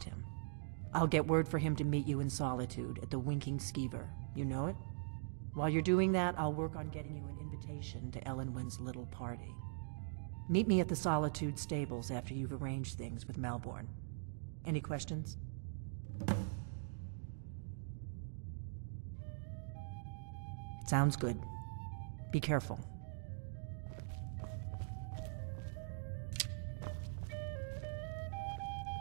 him. I'll get word for him to meet you in Solitude at the Winking Skeever. You know it? While you're doing that, I'll work on getting you an invitation to Elenwen's little party. Meet me at the Solitude stables after you've arranged things with Malborn. Any questions? Sounds good. Be careful.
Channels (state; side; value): silent; left; digital silence